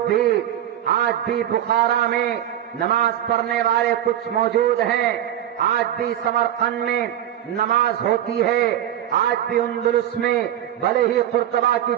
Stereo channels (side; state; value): left; quieter; 11.4 dB